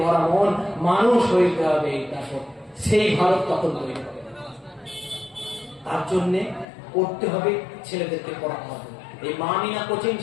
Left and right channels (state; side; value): drops out; right; at 6.7 s